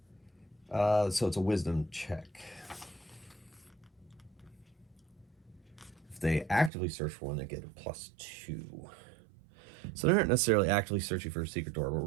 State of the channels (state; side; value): drops out; left; at 6.7 s